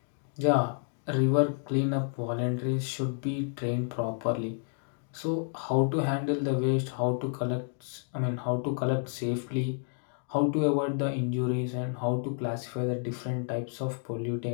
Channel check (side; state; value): right; silent; 58 dB below the other